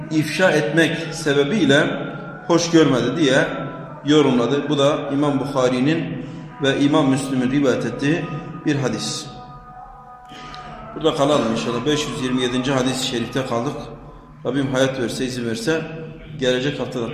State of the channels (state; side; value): identical; both; correlation 1.00